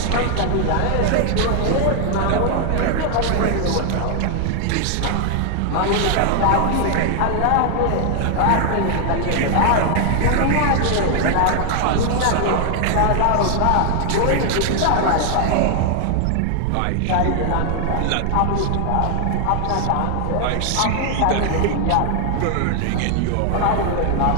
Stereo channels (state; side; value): different; both; correlation 0.00